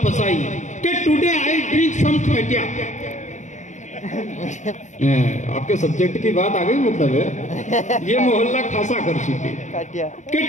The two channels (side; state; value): right; late; 0.35 ms